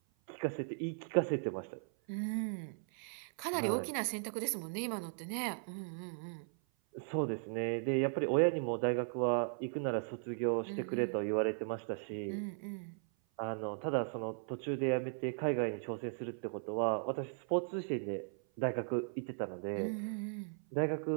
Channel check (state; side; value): silent; left; 53 dB below the other